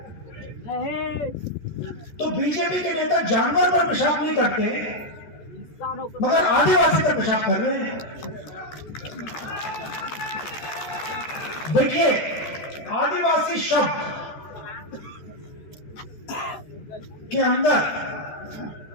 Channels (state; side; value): late; right; 13 ms